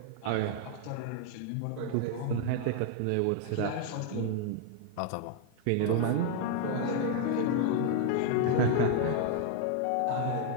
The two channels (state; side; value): different; both; correlation 0.00